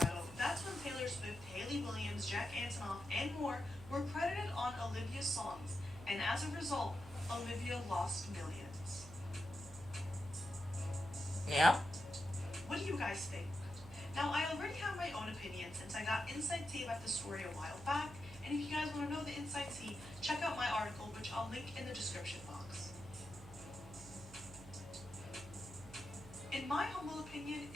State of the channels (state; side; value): noise; right; hum, 16 dB below the sound